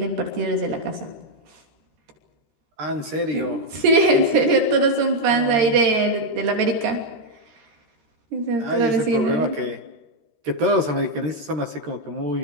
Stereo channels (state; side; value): late; left; 13 ms